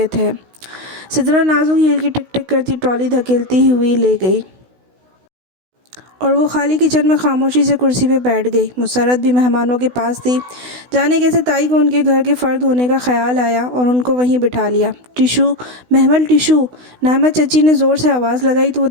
تھے۔ سدرا نازک ہیل کی ٹک ٹک کرتی ٹرالی دھکیلتی ہوئی لے گئی اور وہ خالی کچن میں خاموشی سے کرسی پہ بیٹھ گئی۔ مسرت بھی مہمانوں کے پاس تھی۔ جانے کیسے تائی کو ان کے گھر کے فرد ہونے کا خیال آیا اور ان کو وہیں بٹھا لیا۔ ٹشو محمل ٹشو، نعمت چچی نے زور سے آواز لگائی تو وہ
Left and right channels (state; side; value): late; left; 16 ms